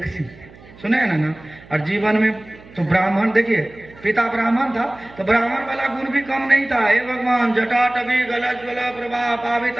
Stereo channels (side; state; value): right; noise; hum, 22 dB below the sound